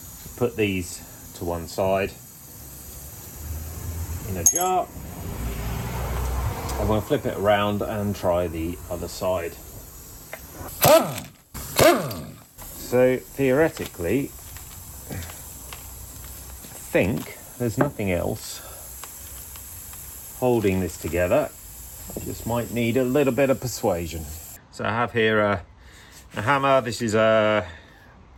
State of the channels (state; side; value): identical; both; correlation 1.00